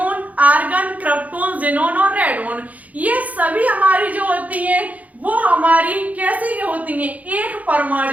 argon, krypton, xenon और रेडॉन, ये सभी हमारी जो होती हैं वो हमारी कैसी होती हैं, एक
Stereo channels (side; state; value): left; late; 0.073 ms